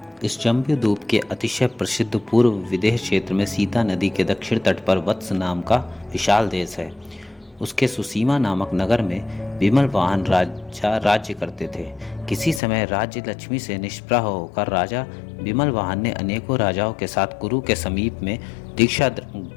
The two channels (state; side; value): drops out; right; at 12.6 s